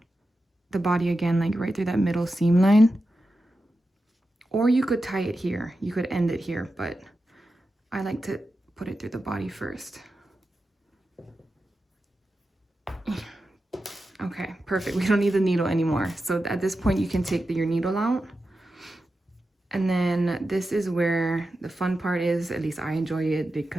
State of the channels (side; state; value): both; normal; correlation 0.91